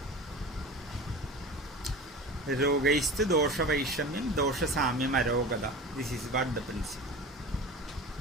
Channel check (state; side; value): normal; both; correlation 0.33